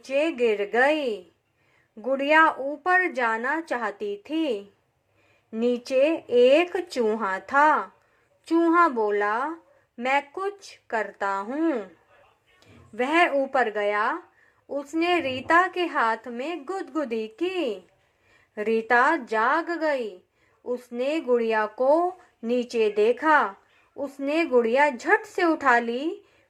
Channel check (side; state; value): both; identical; correlation 1.00